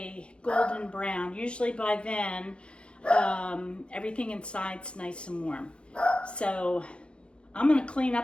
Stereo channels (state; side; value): late; right; 0.057 ms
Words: golden brown. Usually by then, everything inside's nice and warm. So I'm going to clean